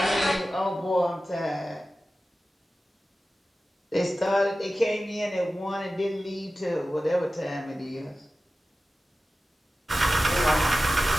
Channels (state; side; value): normal; both; correlation 0.95